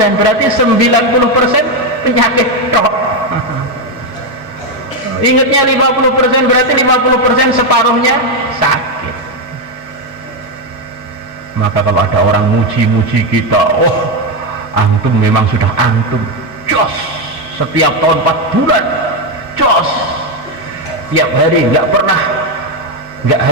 berarti 90% penyakit tok. Ingatnya 50%, berarti 50% separuhnya sakit. Maka kalau ada orang muji-muji kita, oh antum memang sudah antum jos, setiap tahun 4 bulan jos, tiap hari nggak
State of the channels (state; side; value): normal; both; correlation 0.07